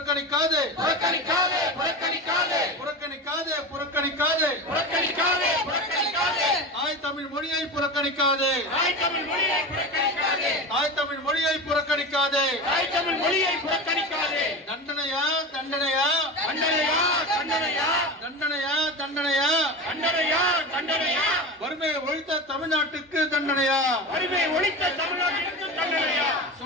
புறக்கணிக்காதே புறக்கணிக்காதே புறக்கணிக்காதே புறக்கணிக்காதே புறக்கணிக்காதே புறக்கணிக்காதே. தாய் தமிழ் மொழியை புறக்கணிக்காதே. தாய் தமிழ் மொழியை புறக்கணிக்காதே. தாய் தமிழ் மொழியை புறக்கணிக்காதே. தாய் தமிழ் மொழியை புறக்கணிக்காதே. தண்டனையா தண்டனையா தண்டனையா தண்டனையா தண்டனையா தண்டனையா தண்டனையா தண்டனையா. வறுமையை ஒழித்த தமிழ்நாட்டுக்கு தண்டனையா. வறுமை ஒழித்த தமிழ்நாட்டிற்கு தண்டனையா.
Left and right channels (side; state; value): both; normal; correlation 0.26